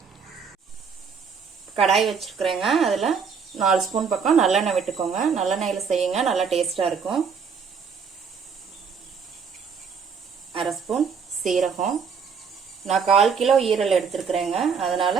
கடாய் வச்சிருக்கிறேங்க, அதில் 4 ஸ்பூன் பக்கம் நல்லெண்ணெய் விட்டுக்கோங்க. நல்லெண்ணெயில் செய்யுங்க, நல்லா டேஸ்டா இருக்கும். 1/2 ஸ்பூன் சீரகம். நான் 1/4 கிலோ ஈரல் எடுத்துருக்குறேங்க,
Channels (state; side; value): quieter; left; 6.1 dB